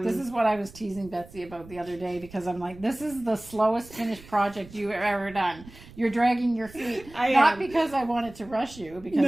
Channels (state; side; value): noise; right; rumble, 20 dB below the sound